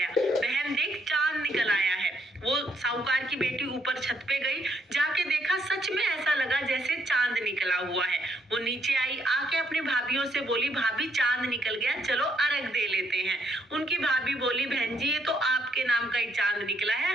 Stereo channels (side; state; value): both; normal; correlation 0.72